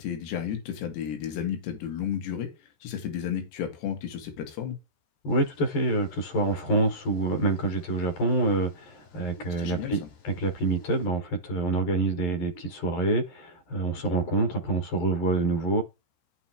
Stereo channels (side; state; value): right; late; 14 ms